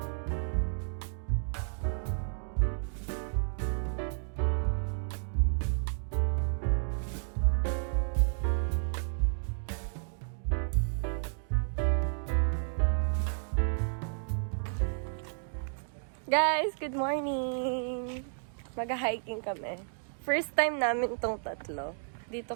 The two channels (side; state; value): left; silent; digital silence